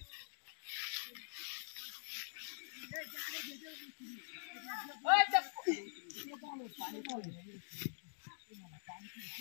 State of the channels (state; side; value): silent; right; digital silence